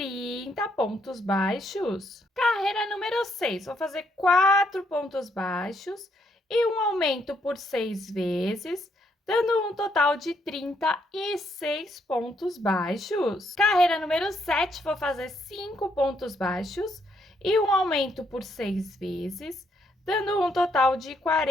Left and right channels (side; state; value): both; normal; correlation 0.73